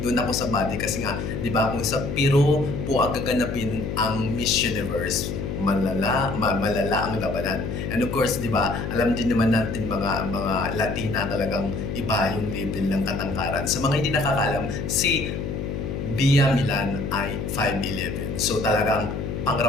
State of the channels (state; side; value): noise; left; hum, 4 dB below the sound